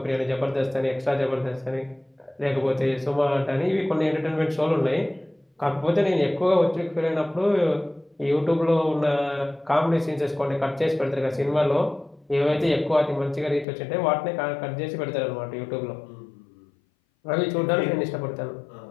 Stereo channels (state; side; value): drops out; right; at 13.7 s